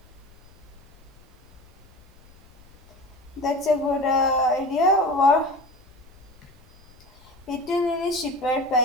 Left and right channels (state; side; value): noise; left; rumble, 26 dB below the sound